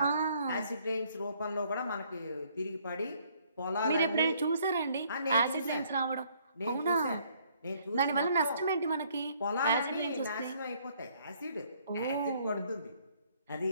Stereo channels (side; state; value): both; inverted; correlation -0.64